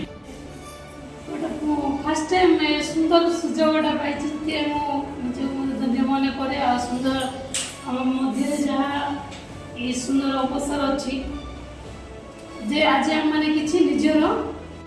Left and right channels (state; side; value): identical; both; correlation 1.00